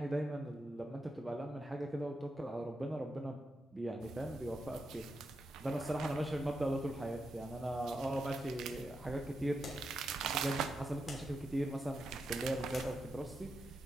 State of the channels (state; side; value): normal; both; correlation 0.86